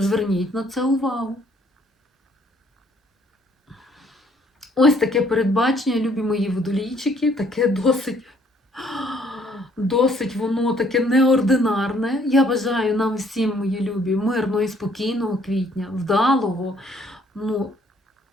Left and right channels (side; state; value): both; normal; correlation 0.63